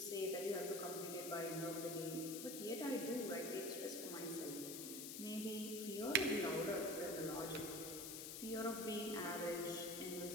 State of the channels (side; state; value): left; noise; hiss, 6 dB below the sound